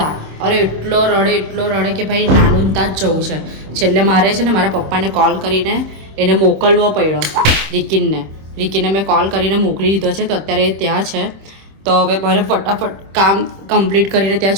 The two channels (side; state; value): left; late; 26 ms